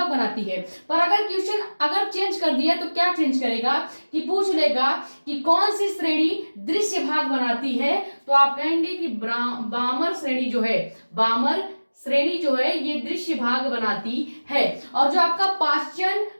बनाती है। पर अगर क्वेश्चन अगर चेंज कर दिया तो क्या चेंज करेगा कि पूछ लेगा कि कौन सी श्रेणी दृश्य भाग बनाती है, तो आप कहेंगे कि बामर श्रेणी जो है, बामर श्रेणी जो है ये दृश्य भाग बनाती है। और जो आपका पास्चन,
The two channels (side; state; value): both; inverted; correlation -1.00